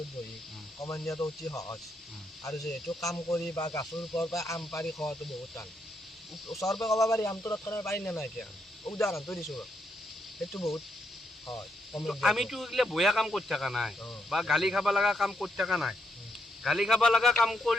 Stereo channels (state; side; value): normal; both; correlation 0.77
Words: বহি কমেণ্ট দিয়াটো অতি সহজ আৰু যিহেতু কাম কৰি বা গাছৰ ওপৰৰ পৰা আম পাৰি খোৱাটো বহুত টান ওচৰৰ পৰা ক'ব পাৰি আমটো তৎক্ষণাত পাৰি নে নাই এতিয়া উদাহৰণটো দিছোঁ সেইটো বহুত হয় আমিতো এইগিলা বেয়া কাম কৰি থকা নাই বা গালি খাব লগা কাম কৰি থকা নাই গালি খাব লগা কাম